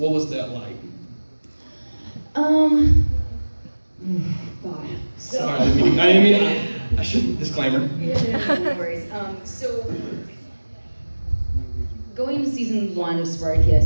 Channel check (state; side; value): inverted; both; correlation -1.00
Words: that like? God. Sorry, I shouldn't, disclaimer. No worries. So, going to season 1 of